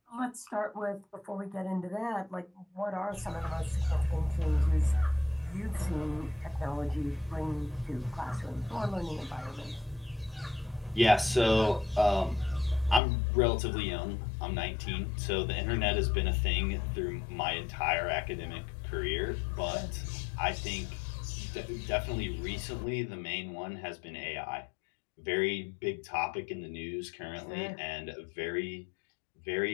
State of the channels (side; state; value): right; drops out; at 13.0 s